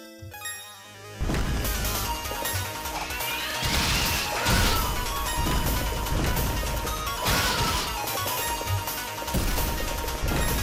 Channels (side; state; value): both; identical; correlation 1.00